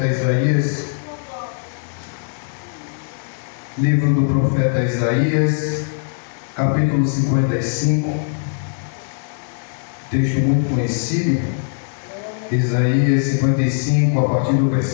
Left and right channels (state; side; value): silent; right; digital silence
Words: Isaías. Livro do profeta Isaías, capítulo 55. Texto muito conhecido. Isaías 55, a partir do